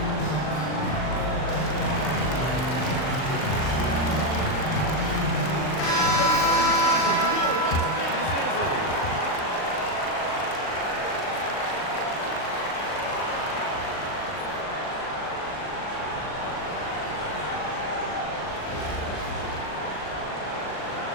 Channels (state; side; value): late; right; 39 ms